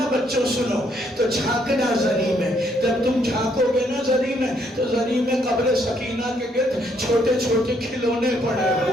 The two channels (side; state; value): both; normal; correlation 0.71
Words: بچوں سنو تو جھانکنا زری میں. جب تم جھانکو گے نا زری میں تو زری میں قبر سکینہ کے گرد چھوٹے چھوٹے کھلونے پڑے